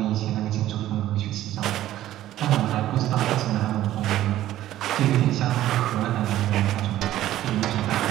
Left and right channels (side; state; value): left; quieter; 13.7 dB